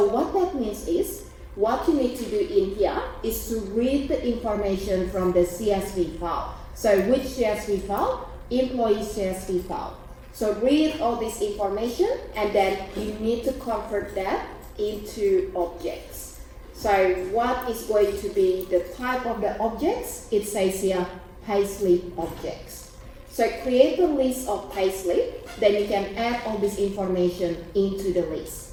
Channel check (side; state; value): both; identical; correlation 1.00